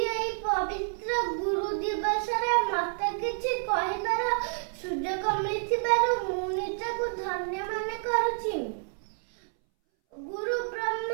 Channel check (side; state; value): left; silent; 58 dB below the other